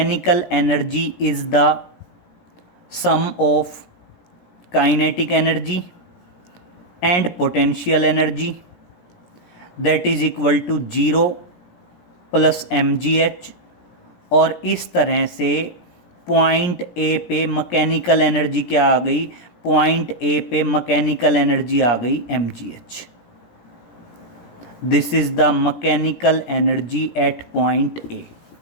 energy is the sum of kinetic energy and potential energy, that is equal to 0 plus mgh। और इस तरह से पॉइंट ए पे मैकेनिकल एनर्जी क्या आ गई, पॉइंट ए पे मैकेनिकल एनर्जी आ गई mgh। This is the mechanical energy at point A.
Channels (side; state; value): right; late; 17 ms